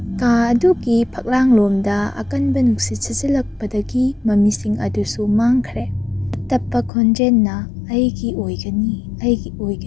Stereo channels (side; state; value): right; drops out; at 6.9 s